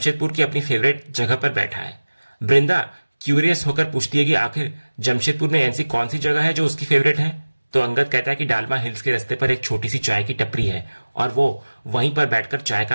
की अपनी फेवरेट जगह पर बैठा है। वृंदा क्यूरियस होकर पूछती है कि आखिर जमशेदपुर में ऐसी कौन सी जगह है जो उसकी फेवरेट है। तो अंगद कहता है कि डालमा हिल्स के रास्ते पर एक छोटी सी चाय की टपरी है और वो वहीं पर बैठकर चाय का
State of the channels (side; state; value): both; inverted; correlation -1.00